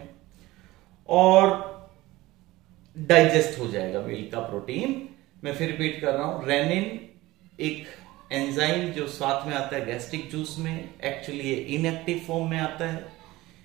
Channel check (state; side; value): quieter; left; 18.7 dB